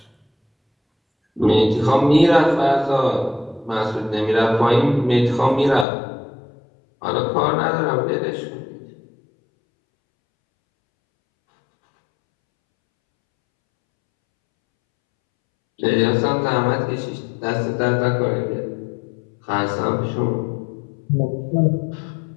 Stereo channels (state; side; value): drops out; right; at 5.9 s